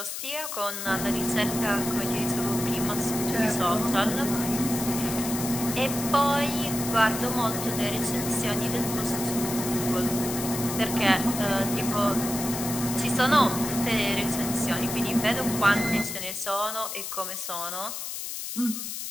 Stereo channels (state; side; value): noise; left; hiss, 6 dB below the sound